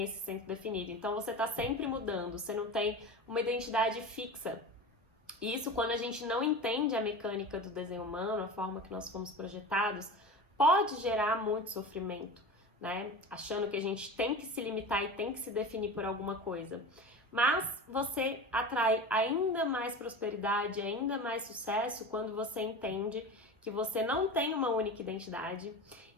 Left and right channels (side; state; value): both; normal; correlation 0.31